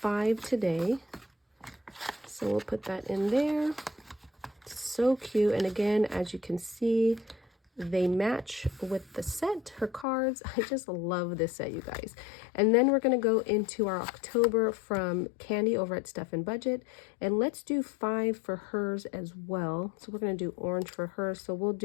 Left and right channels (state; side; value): drops out; right; at 10.1 s